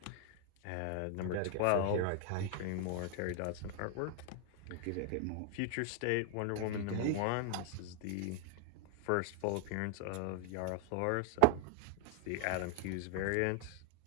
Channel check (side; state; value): both; different; correlation 0.00